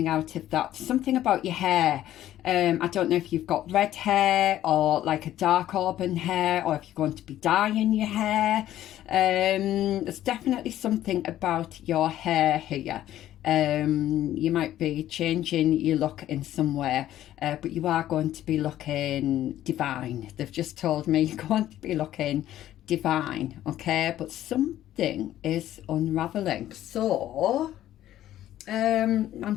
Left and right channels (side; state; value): right; quieter; 12.9 dB